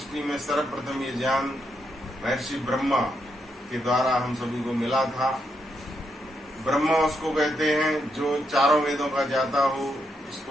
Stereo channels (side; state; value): both; normal; correlation 0.80